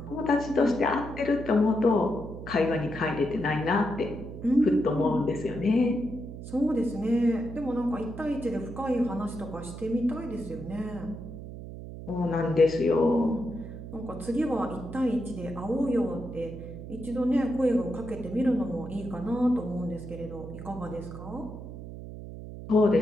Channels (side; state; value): right; noise; hum, 11 dB below the sound